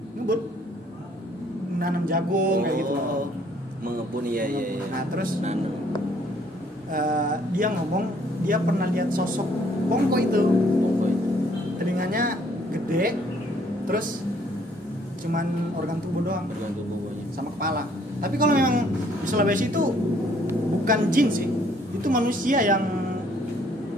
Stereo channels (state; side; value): normal; both; correlation 0.63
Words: Ngebun. Nanam jagung kayak gitu. Mengebun iya. Nah, terus Nanam. dia ngomong dia pernah lihat sosok bongko itu. Telinganya gede, terus cuman organ tubuh doang Bergantung bumbunya. sama kepala. Tapi kalau memang di Sulawesi itu bukan jin sih, itu manusia yang